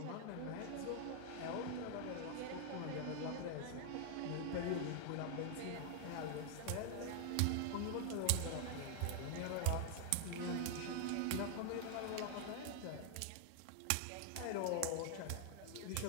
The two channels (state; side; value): different; both; correlation 0.00